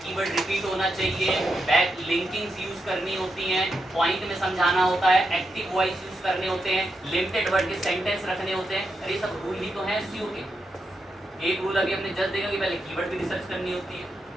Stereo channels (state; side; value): normal; both; correlation 0.85